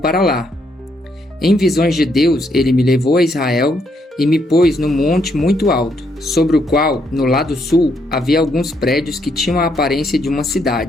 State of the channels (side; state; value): both; normal; correlation 0.74